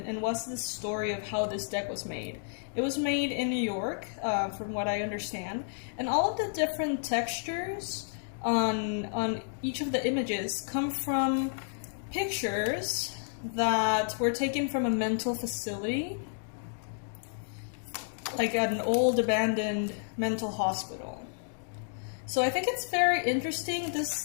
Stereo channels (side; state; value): right; silent; digital silence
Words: and was the story of how this deck was made. It was made in New York, from what I understand, and all of the different textures on each of the images come from pictures that were taken from a mental facility, like at an old abandoned mental hospital. So I think it's very interesting.